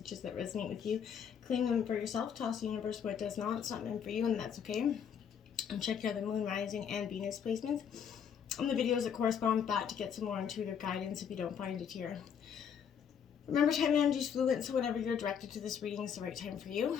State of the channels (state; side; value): quieter; right; 7.8 dB